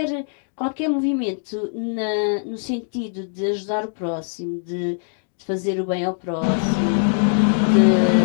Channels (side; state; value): right; silent; digital silence